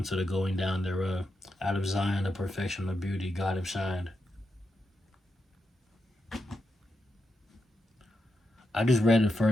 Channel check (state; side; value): normal; both; correlation 0.86